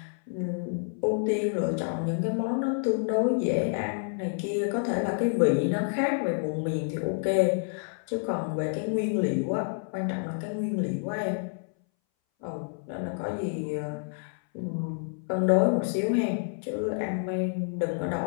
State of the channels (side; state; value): right; silent; 59 dB below the other